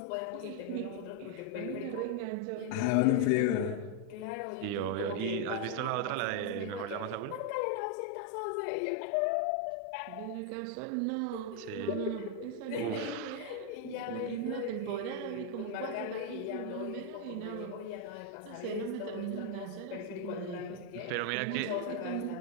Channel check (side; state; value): both; different; correlation 0.00